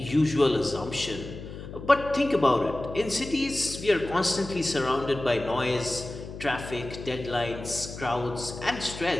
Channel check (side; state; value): left; noise; hum, 11 dB below the sound